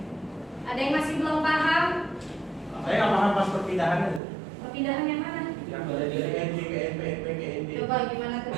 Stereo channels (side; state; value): left; drops out; at 4.2 s